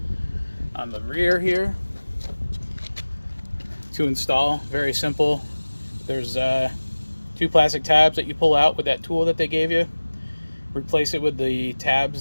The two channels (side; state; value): both; inverted; correlation -1.00